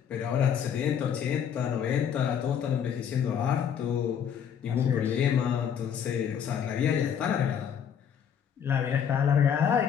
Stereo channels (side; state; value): right; quieter; 8.2 dB